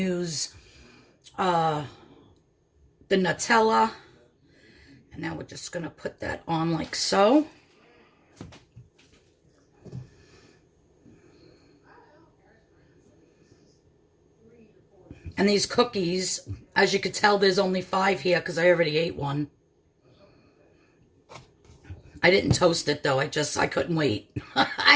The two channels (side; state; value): both; identical; correlation 1.00